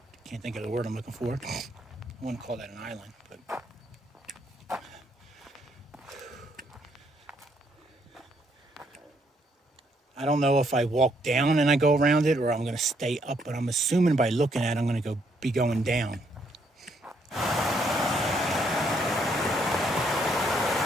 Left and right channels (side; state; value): both; normal; correlation 0.71